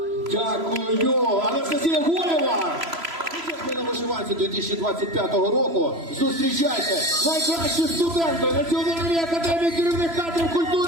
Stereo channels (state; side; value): late; left; 3.0 ms